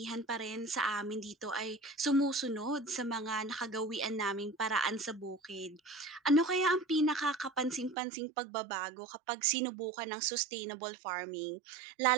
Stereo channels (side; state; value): left; drops out; at 8.0 s